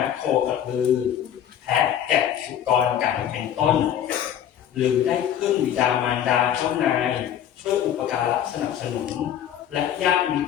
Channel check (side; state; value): right; quieter; 10.1 dB